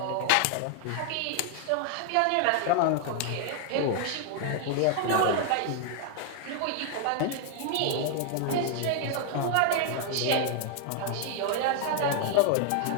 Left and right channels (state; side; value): different; both; correlation 0.00